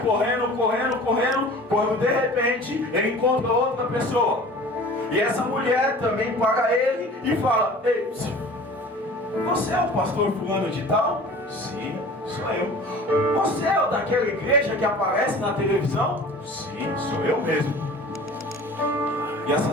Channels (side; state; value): both; normal; correlation 0.43